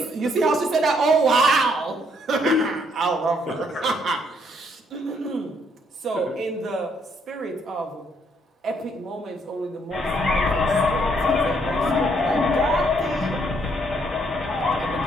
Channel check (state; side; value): normal; both; correlation 0.70